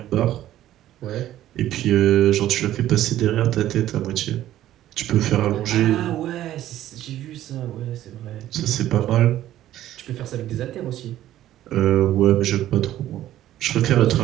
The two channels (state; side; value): quieter; left; 13.1 dB